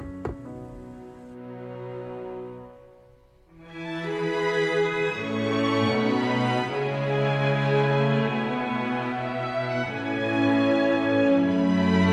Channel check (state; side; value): identical; both; correlation 1.00